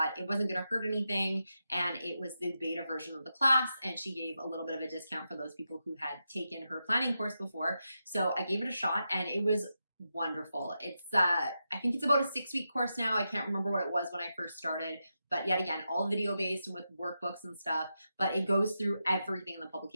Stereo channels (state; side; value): inverted; both; correlation -0.87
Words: it wasn't going to hurt anything. And it was the beta version of the class. And she gave a little bit of a discount for those people who had taken her planning course before. So I gave it a shot, and it was wonderful. It's I think it's about a 6-week course now. I can't remember what it was when I first started, but yet again, all video based with workbooks and stuff, but it goes through everything in the